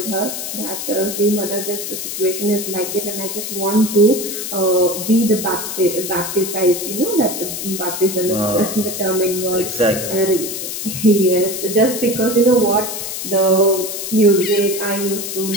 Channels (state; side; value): noise; left; hiss, 5 dB below the sound